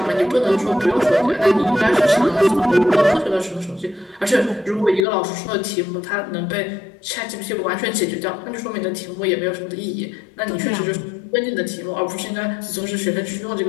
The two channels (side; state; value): right; drops out; at 5.1 s